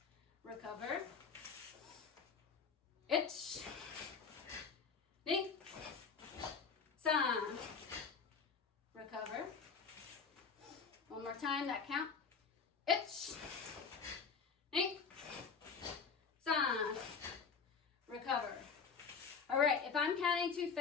recover, itch, knee, san, recover. One more time, that count. Itch, knee, san, recover. All right, if I'm counting too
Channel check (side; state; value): right; quieter; 5.6 dB